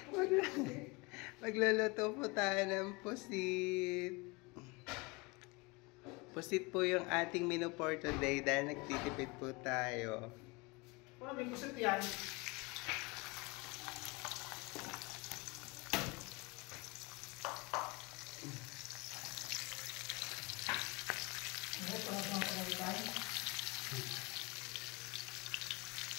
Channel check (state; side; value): quieter; right; 26.3 dB